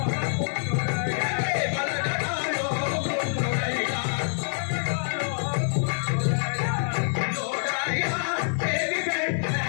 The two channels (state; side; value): silent; right; digital silence